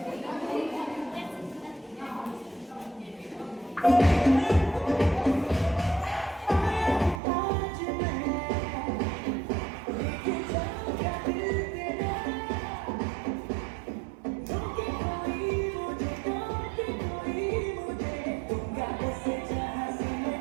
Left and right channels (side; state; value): left; drops out; at 7.2 s